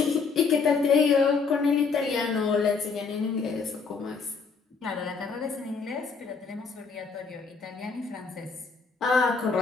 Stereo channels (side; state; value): right; quieter; 5.0 dB